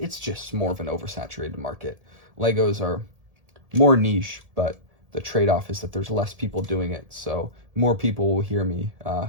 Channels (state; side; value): late; left; 1.7 ms